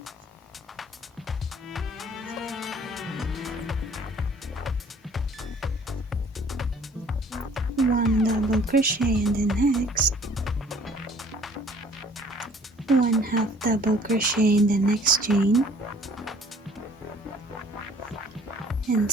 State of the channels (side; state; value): both; normal; correlation 0.54